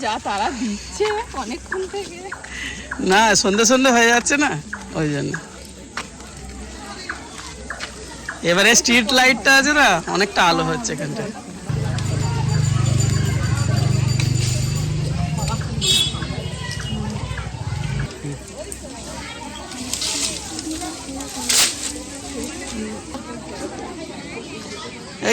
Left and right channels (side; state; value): both; identical; correlation 1.00